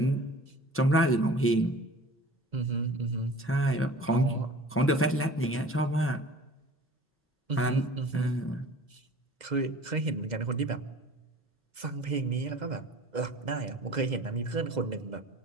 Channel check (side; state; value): both; normal; correlation 0.45